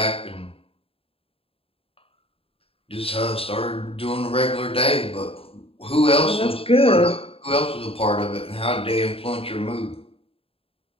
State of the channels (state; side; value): late; right; 0.27 ms